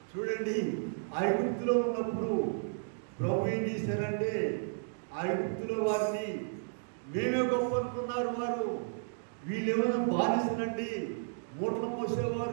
చూడండి, ఐగుప్తులో ఉన్నప్పుడు ప్రభు ఏం చేశారంటే ఐగుప్తులో వారిని మేమే గొప్ప అనుకున్నారు. వారు వీళ్ళేమైనా బానిసనండి, మూటలు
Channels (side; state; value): left; silent; digital silence